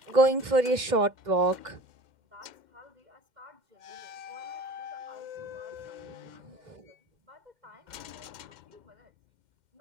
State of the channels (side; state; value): left; late; 2.1 ms